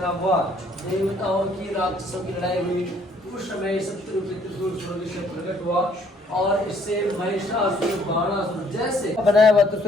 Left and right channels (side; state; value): both; normal; correlation 0.63